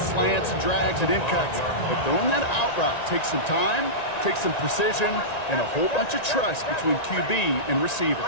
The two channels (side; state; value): right; late; 1.9 ms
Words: and drags and in cuts, but throwing that out route takes some time, takes some precision, and a whole bunch of trust between QB and receiver.